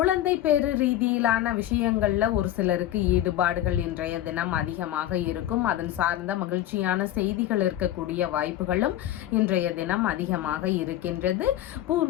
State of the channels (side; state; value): right; quieter; 12.9 dB